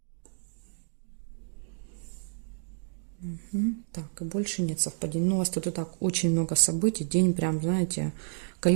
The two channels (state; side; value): silent; left; digital silence